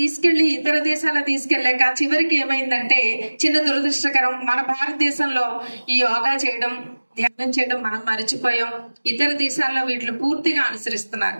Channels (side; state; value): both; inverted; correlation -1.00